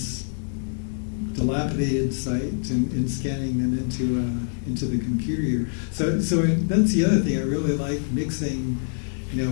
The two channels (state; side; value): silent; right; digital silence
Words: dilapidated site, and scanning them into the computer here. So that's the other thing I really like, mixing,